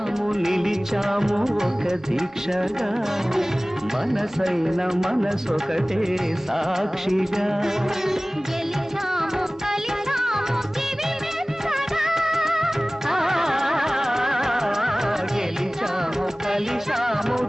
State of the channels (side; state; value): both; normal; correlation 0.98